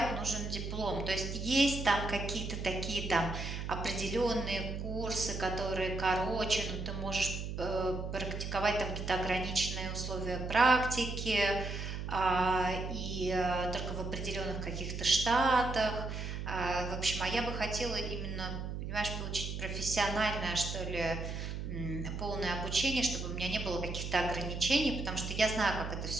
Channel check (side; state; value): right; noise; hum, 5 dB below the sound